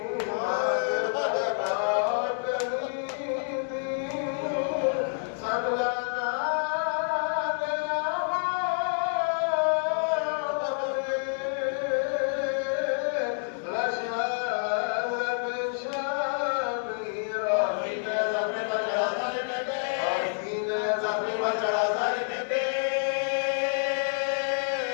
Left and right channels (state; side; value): silent; right; 59 dB below the other